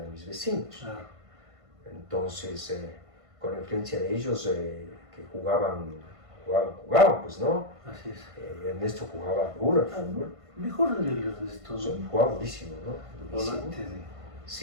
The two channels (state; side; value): late; left; 1.5 ms